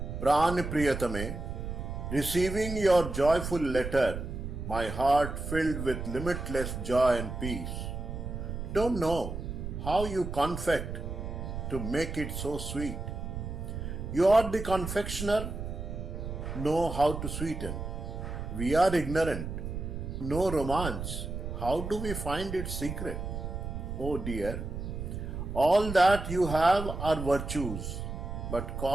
Pran Priyatame, receiving your joyful letter, my heart filled with limitless joy and peace. Don't know how you confect to make it so sweet. You are the confectioner, know how to sweeten. We are ignorant, no romance. How do we find its secret? Oh dear, all that you have are virtues, but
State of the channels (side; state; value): right; noise; rumble, 6 dB below the sound